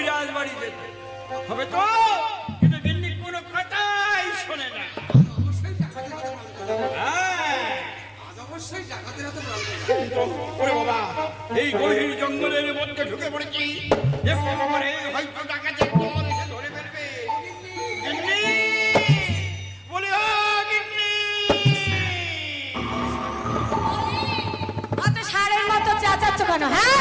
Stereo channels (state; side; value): identical; both; correlation 1.00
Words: বাড়ি যেতে হবে তো, কিন্তু গিন্নি কোনো কথাই শোনে না। হ্যাঁ। ওরে বাবা, এই গভীর জঙ্গলের মধ্যে ঢুকে পড়েছি, দেখতে পারে হয়তো ডাকাতের দল এসে ধরে ফেলবে। গিন্নি! বলি, ও গিন্নি! অত ষাঁড়ের মতো চেঁচাচ্ছ কেন?